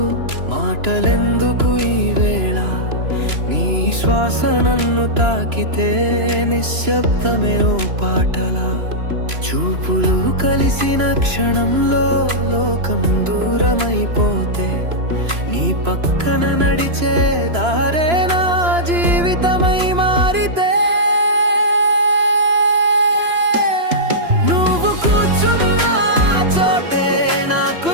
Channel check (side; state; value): left; late; 2.9 ms